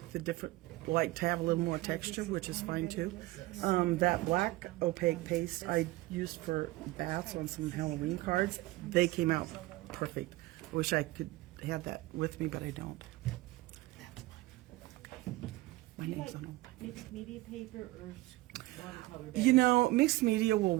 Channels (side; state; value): left; quieter; 19.3 dB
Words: to have a little more texture, which is fine too. That black opaque paste I used for bats on some Halloween cards, they came out perfect. I wish I could have that with me, but I don't. That's fine. My name's on them. Mixed media paper or watercolor? You know, mixed media will